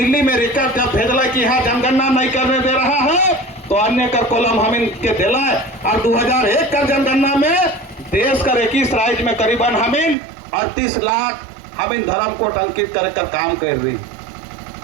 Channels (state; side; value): drops out; left; at 10.2 s